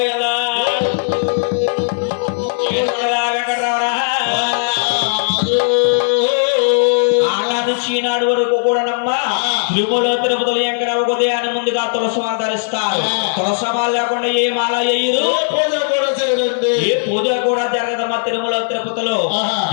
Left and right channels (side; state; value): right; silent; 66 dB below the other